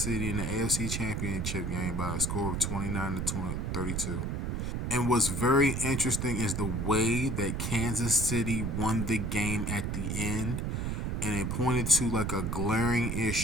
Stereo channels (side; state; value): right; noise; rumble, 1 dB below the sound